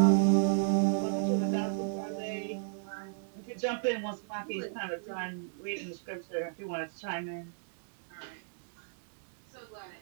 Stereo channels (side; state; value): left; silent; 56 dB below the other